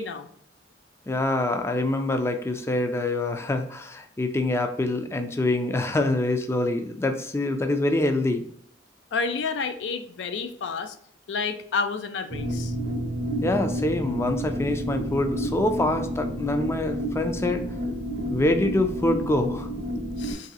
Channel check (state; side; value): normal; both; correlation 0.64